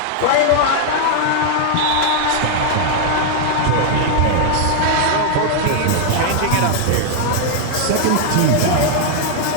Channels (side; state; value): both; different; correlation 0.00